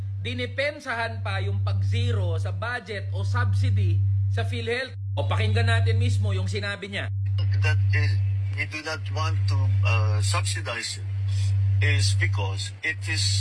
dinipensahan pa yung pag-zero sa budget o subsidy sa PhilHealth. O pakinggan natin mismo yung sinabi niya. That is, we do not want to subsidize it is because it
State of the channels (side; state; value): both; identical; correlation 1.00